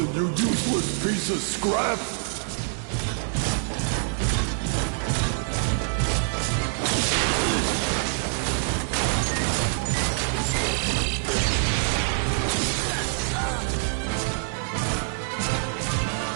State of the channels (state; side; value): silent; left; digital silence